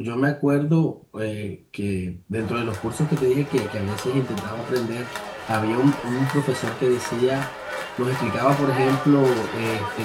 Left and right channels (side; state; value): both; identical; correlation 1.00